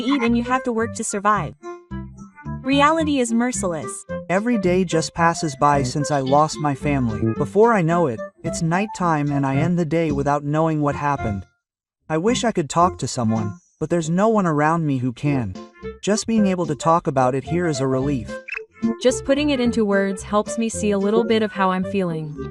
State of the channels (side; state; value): both; identical; correlation 1.00